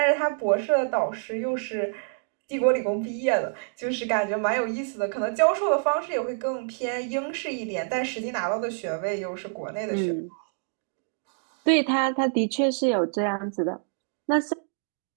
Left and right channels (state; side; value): silent; left; digital silence